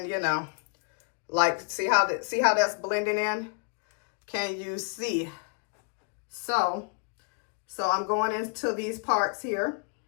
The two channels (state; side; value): quieter; right; 39.9 dB